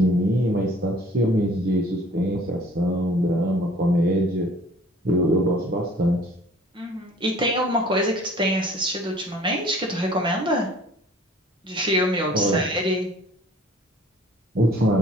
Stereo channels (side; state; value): both; normal; correlation 0.51